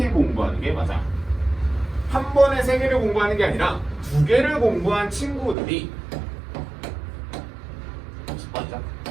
공부하는 게 맞아. 한 번에 세 개를 공부하는 게 아니라 두 개를 공부한 친구들이 10번이죠.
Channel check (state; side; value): drops out; left; at 5.6 s